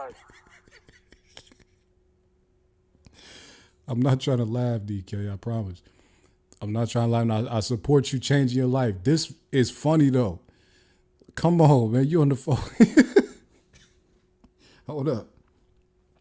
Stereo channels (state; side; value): identical; both; correlation 1.00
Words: I'm not trying to laugh, DK. I promise. I'm not trying to laugh. I support you changing your life. This is funny though. Come on, man. You on the phone? Hold up.